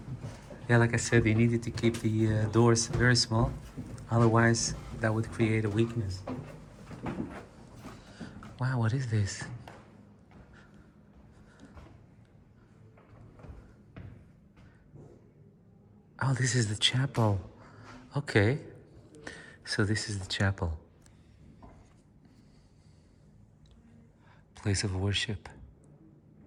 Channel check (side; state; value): both; identical; correlation 1.00